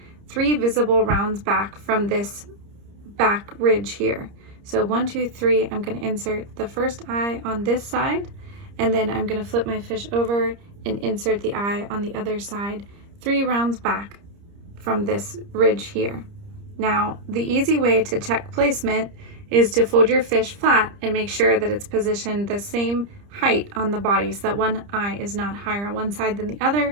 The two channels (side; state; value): left; late; 30 ms